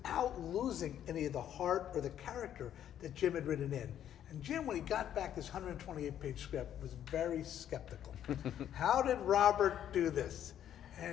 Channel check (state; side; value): quieter; right; 10.5 dB